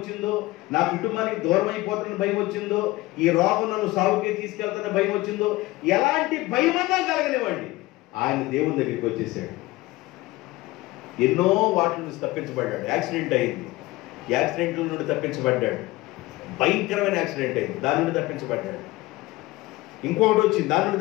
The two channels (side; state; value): right; quieter; 19.5 dB